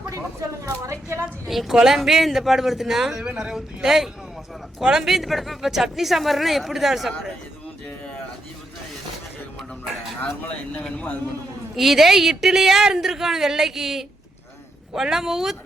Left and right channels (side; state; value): both; normal; correlation 0.81